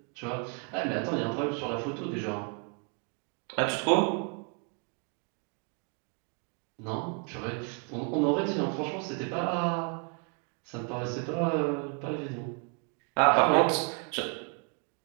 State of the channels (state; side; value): quieter; left; 37.7 dB